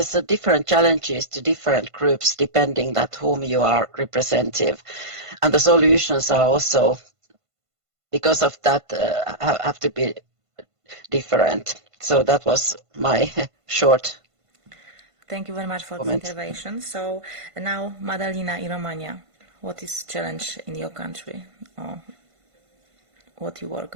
a different challenges to different groups depending that whom you are representative, and the solutions are also because of that have to be different. So that was my short. Thank you very much for comment. the intervention. So now, Madalina, in Romania, what is challenge in your country, or what you work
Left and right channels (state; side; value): late; left; 1.5 ms